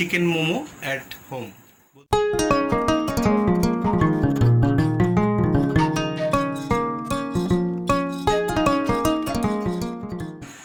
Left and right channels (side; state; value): both; identical; correlation 1.00